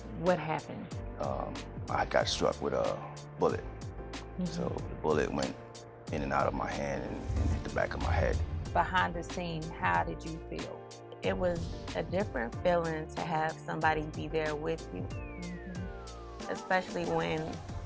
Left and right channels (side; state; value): both; identical; correlation 1.00